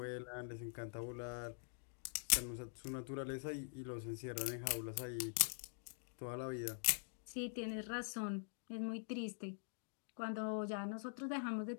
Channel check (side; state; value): right; silent; digital silence